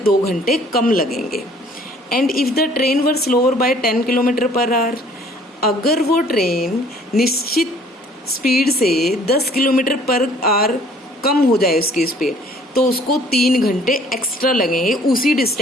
2 घंटे कम लगेंगे। And if the train were slower by 10 kilometre per hour, अगर वो ट्रेन निश्चित स्पीड से 10 किलोमीटर पर आवर कम हो जाए उसकी स्पीड, तो उसको 3 घंटे एक्स्ट्रा लगेंगे उसी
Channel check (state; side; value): normal; both; correlation 0.56